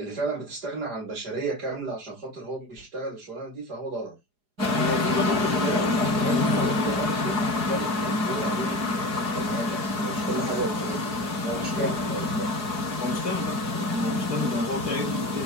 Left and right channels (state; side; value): late; left; 4.8 ms